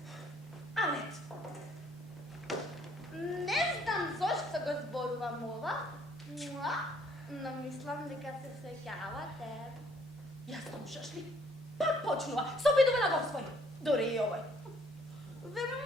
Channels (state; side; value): normal; both; correlation 0.63